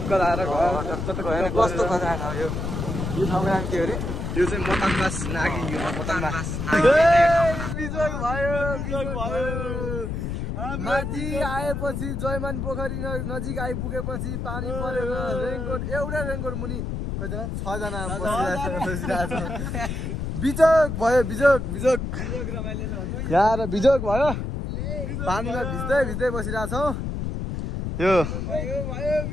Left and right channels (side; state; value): left; noise; rumble, 3 dB below the sound